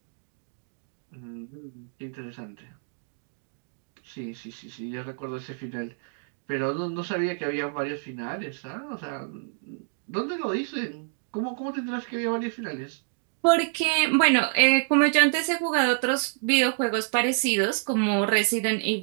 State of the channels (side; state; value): left; silent; digital silence